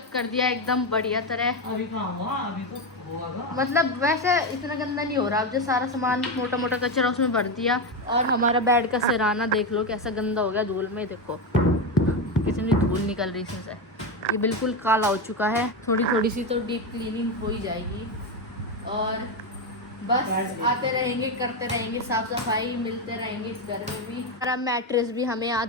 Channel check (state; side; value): normal; both; correlation 0.12